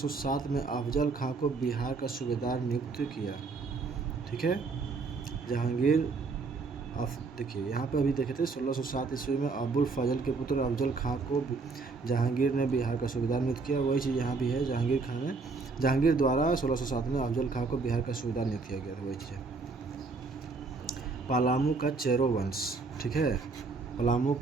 में अफजल खां को बिहार का सूबेदार नियुक्त किया। ठीक है, जहांगीर देखिए यहाँ पर अभी देखे थे 1607 ईस्वी में अबुल फजल के पुत्र अफजल खां को जहांगीर ने बिहार का सूबेदार नियुक्त किया। वही चीज़ यहाँ भी है, जहांगीर द्वारा 1607 में अफजल खां को बिहार का सूबेदार नियुक्त किया गया था। वही चीज़ है। पलामू का चेरो वंश, ठीक है, पलामू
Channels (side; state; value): left; quieter; 4.2 dB